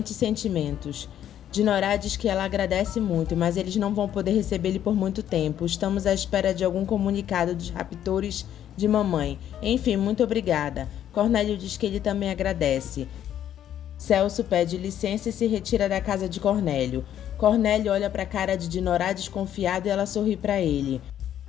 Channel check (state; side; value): quieter; right; 10.7 dB